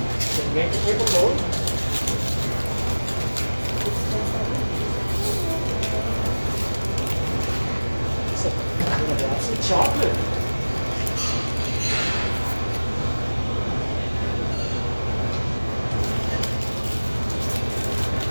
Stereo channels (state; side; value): inverted; both; correlation -1.00